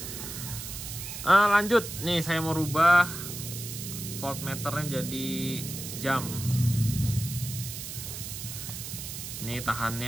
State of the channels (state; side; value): noise; right; hiss, 8 dB below the sound